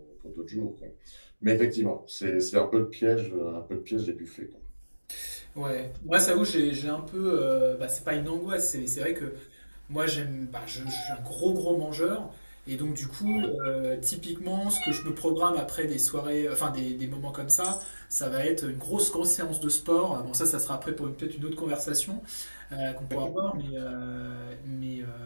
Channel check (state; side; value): inverted; both; correlation -1.00